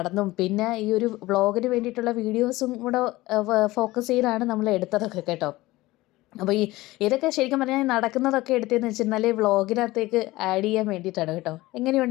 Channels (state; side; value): quieter; right; 18.8 dB